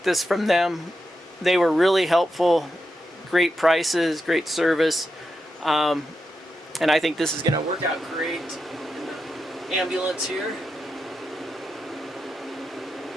this from them. They were really helpful, great prices, great service, and I think this is going to work out great in the ambulance here.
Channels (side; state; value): both; normal; correlation 0.87